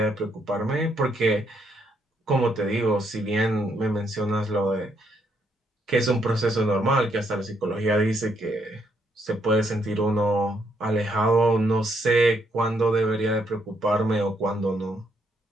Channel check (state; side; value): normal; both; correlation 0.74